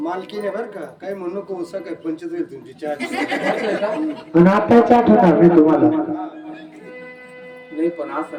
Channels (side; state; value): both; identical; correlation 1.00